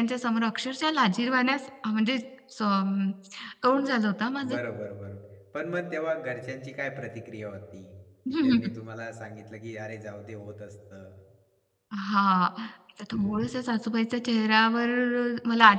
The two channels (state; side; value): identical; both; correlation 1.00